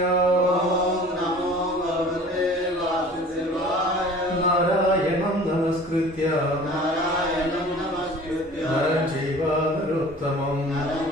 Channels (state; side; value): normal; both; correlation 0.45